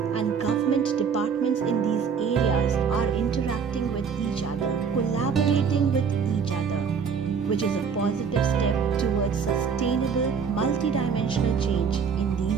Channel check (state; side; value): quieter; left; 6.3 dB